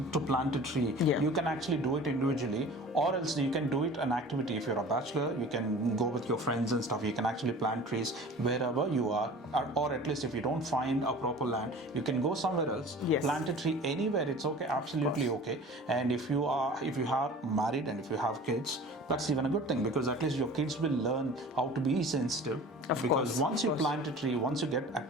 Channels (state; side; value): normal; both; correlation 0.41